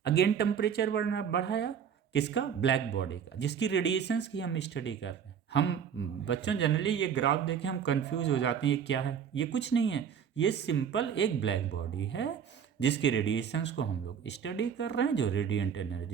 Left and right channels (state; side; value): quieter; left; 7.8 dB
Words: अगेन टेम्परेचर बढ़ाया, किसका, ब्लैक बॉडी का, जिसकी रेडिएशंस की हम स्टडी कर रहे हैं। हम बच्चों जनरली ये ग्राफ देखें हम कंफ्यूज हो जाते हैं, ये क्या है, ये कुछ नहीं है, ये सिंपल एक ब्लैक बॉडी है जिसकी रेडिएशंस को हम लोग स्टडी कर रहे हैं, जो रेडिएंट